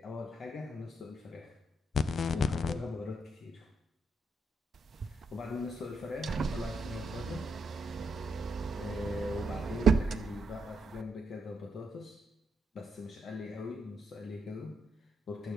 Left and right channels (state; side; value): normal; both; correlation 0.79